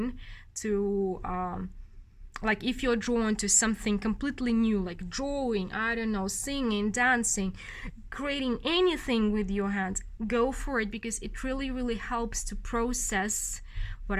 to like, if you're drawn to something completely new, like drawing, I don't know, singing, dancing, creating anything with your hands, go for it, because it really, really helps to process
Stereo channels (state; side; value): identical; both; correlation 1.00